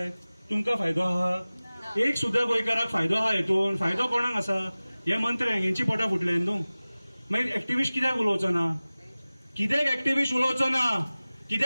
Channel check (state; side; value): inverted; both; correlation -0.98